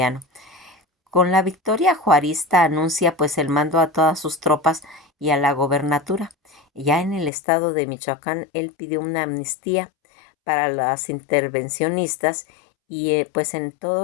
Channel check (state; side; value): drops out; right; at 7.3 s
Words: Con la victoria juarista anuncia pues el mando a todas sus tropas y a la gobernatura. Ya en el estado de Michoacán él pidió una amnistía para las intervencionistas y pues en